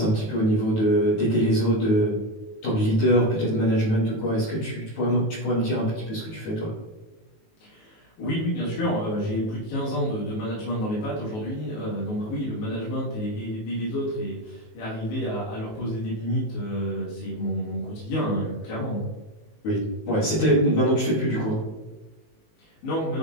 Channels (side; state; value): right; late; 19 ms